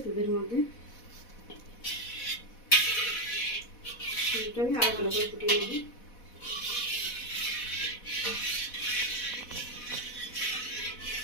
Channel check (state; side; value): late; right; 4.1 ms